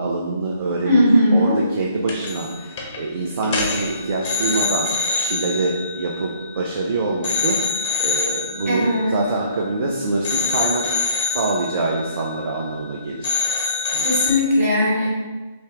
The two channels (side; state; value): both; inverted; correlation -0.60